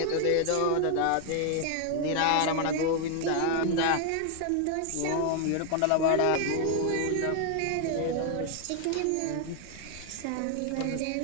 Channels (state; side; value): different; both; correlation 0.00